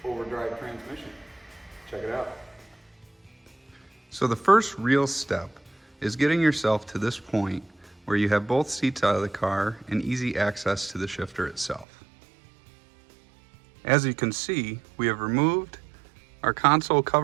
overdrive transmission. Check it out. So the first real step is getting yourself to this point where you have both seats out of the car and easy access to the shifter itself. As you can see, we have removed our console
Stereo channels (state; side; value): drops out; left; at 11.9 s